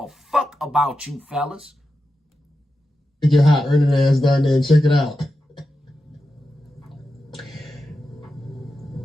fuck about you fellas. Get your hot earning ass down there and check it out.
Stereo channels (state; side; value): normal; both; correlation 0.90